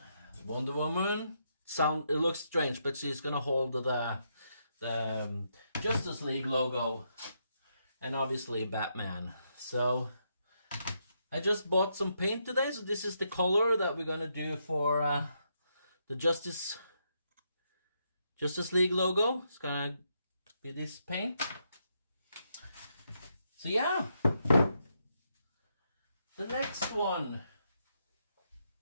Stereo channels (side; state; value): both; inverted; correlation -0.79